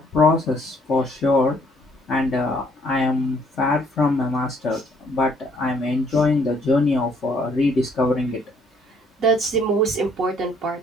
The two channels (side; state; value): both; normal; correlation 0.64